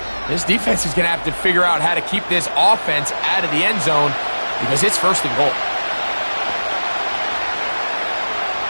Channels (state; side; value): inverted; both; correlation -1.00